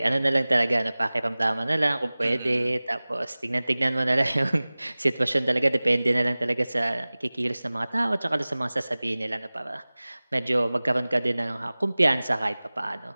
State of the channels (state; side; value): inverted; both; correlation -0.99